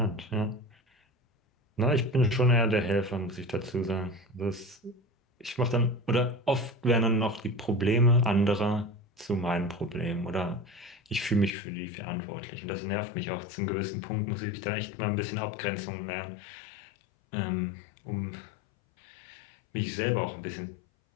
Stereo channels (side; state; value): right; drops out; at 11.5 s